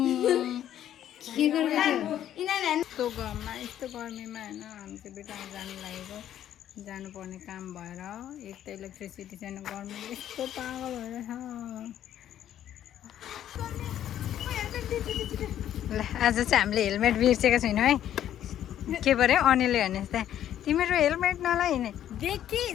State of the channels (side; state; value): right; quieter; 11.1 dB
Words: के गर्दैछौ यस्तो घाममा यस्तो गर्मीमा होइन हामी चाहिँ बेटामा जानु लागेको जानुपर्ने काम भएर एक त इलेक्ट्रिसिटी छैन गर्मीले यस्तो पागल भएर ल आज चाहिँ हामीले हेलमेट बिर्सेको छैनौँ है के पऱ्यो अनिलले भने जस्तै तिमीहरू हेलमेट नलाइने